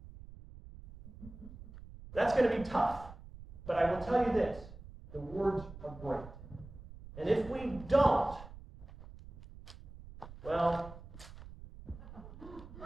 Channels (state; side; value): noise; right; rumble, 16 dB below the sound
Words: That's going to be tough. But I will tell you this, the words are great. And if we don't, well,